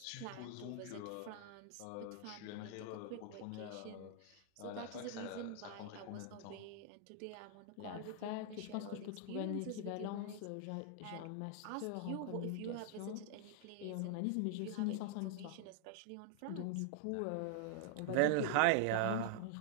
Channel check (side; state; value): both; different; correlation 0.00